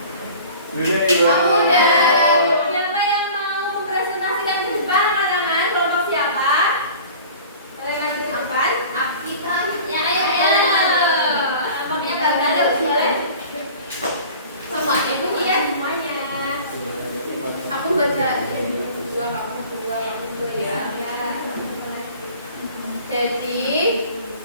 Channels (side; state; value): both; inverted; correlation -0.43